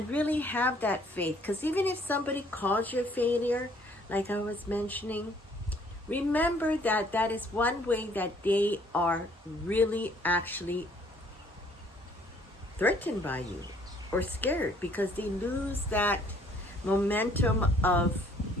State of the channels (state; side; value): normal; both; correlation 0.61